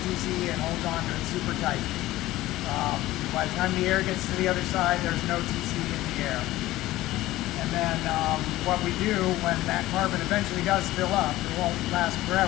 TCE and holds on to it super tight. By the time the air gets to the other side, there's no TCE in the air. And then what we do when that carbon eventually does fill up, it won't last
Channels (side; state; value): right; quieter; 16.6 dB